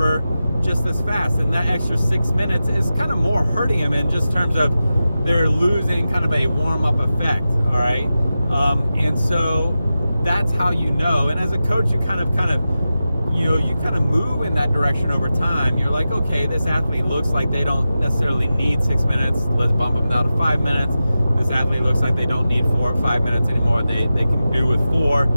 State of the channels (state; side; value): inverted; both; correlation -0.93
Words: just as fast. And that extra 6 minutes is kind of more hurting them in just terms of they're losing kind of a warm-up effect, all right? And so that's how you know. And as a coach, you kind of move in that direction over time. You're like, okay, this athlete looks like they don't necessarily need 6 minutes. Let's bump them down to 5 minutes. This athlete looks like they don't need 4 or 5 minutes anymore. They can do with 4.